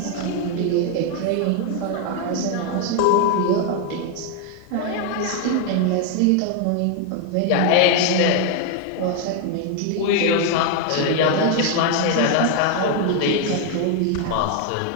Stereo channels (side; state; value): both; different; correlation 0.01